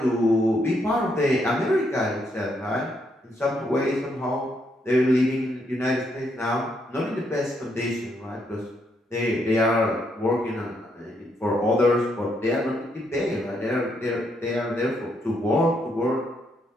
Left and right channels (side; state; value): both; normal; correlation 0.75